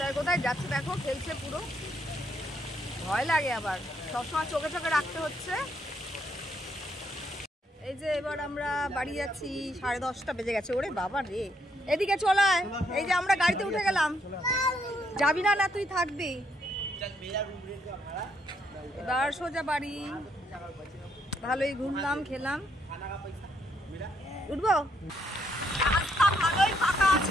কোথায় যাচ্ছে দেখো, খেলছে পুরো, ভয় লাগে আবার, সবসময় চোখে চোখে রাখতে হচ্ছে। এই যে এবার আমরা বাড়ি যাচ্ছি, 10:30 বেজে গেছে। ওরে বাবা রে, এদিকে চলায়। এই যে আমরা গাড়িতে উঠে গেলাম। যাবি না? না তুই থাকবি। এবার সোজা বাড়ি। ভালোই ঘুরলাম, খেলাম। উঠবো? রাস্তা ভালোই ফাঁকা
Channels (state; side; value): normal; both; correlation 0.74